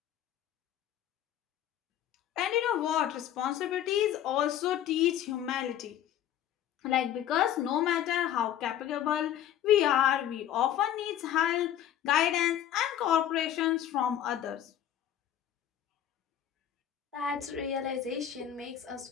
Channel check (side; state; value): right; quieter; 10.9 dB